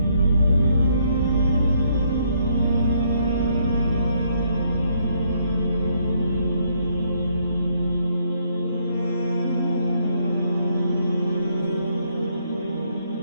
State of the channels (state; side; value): inverted; both; correlation -0.71